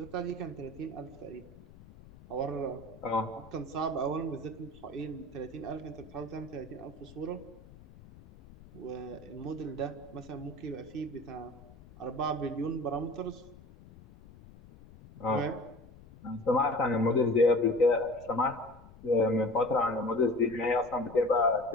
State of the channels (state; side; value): noise; left; rumble, 20 dB below the sound